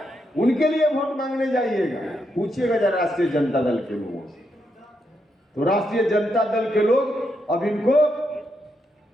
उनके लिए वोट मांगने जाइएगा? पूछिएगा जरा राष्ट्रीय जनता दल के लोगों से। तो राष्ट्रीय जनता दल के लोग अब इनको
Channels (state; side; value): normal; both; correlation 0.81